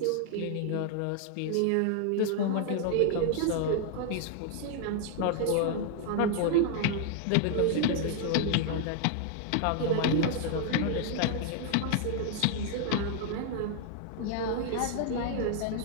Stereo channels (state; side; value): different; both; correlation 0.00